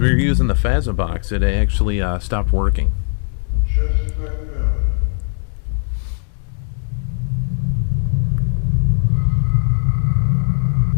we were using the Phasma box, it actually stopped working. Just like that.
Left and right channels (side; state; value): right; silent; digital silence